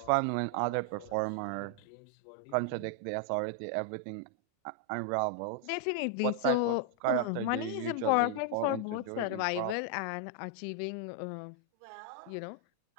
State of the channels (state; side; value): different; both; correlation 0.00